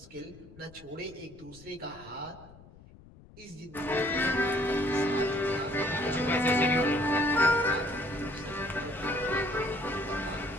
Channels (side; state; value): left; noise; rumble, 21 dB below the sound